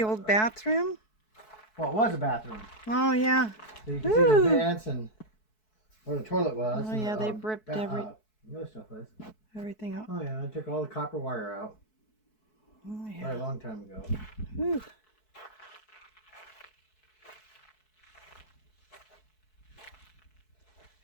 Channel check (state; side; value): late; right; 4.6 ms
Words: old bathroom? well, it was a bathroom. Oh, yeah. So you can see the vents and where the toilet was. Oh, and yeah, the, they've ripped the other stuff was. everything out. Oh yeah, I took all the copper wire out. Oh, Quite yeah. a long time ago. Whew.